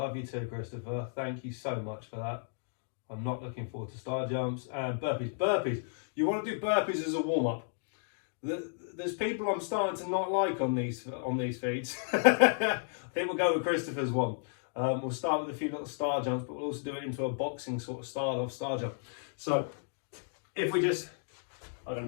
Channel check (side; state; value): right; silent; digital silence